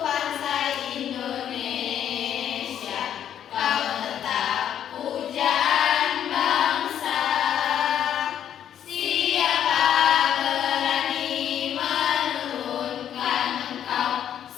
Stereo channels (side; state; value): right; quieter; 9.8 dB